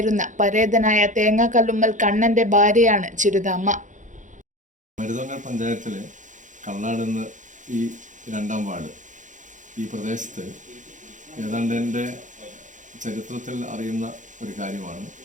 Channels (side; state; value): left; late; 0.36 ms